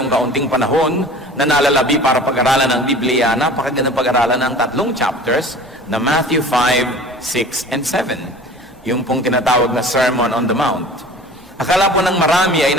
kaunting panahon na nalalabi para pag-aralan ng Biblia, napakagandang pag-aralan ng 3 chapters na Matthew 5, 6, and 7. Yung pong tinatawag na Sermon on the Mount. Akala po ng marami ay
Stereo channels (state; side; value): normal; both; correlation 0.42